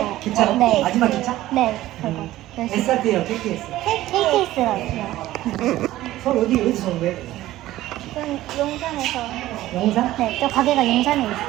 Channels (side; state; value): left; quieter; 15.3 dB